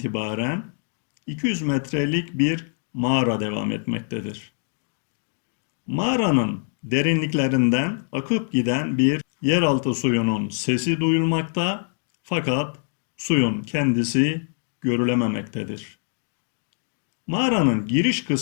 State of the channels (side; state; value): right; silent; 63 dB below the other